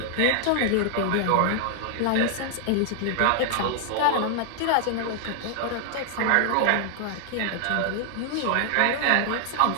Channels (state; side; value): different; both; correlation 0.00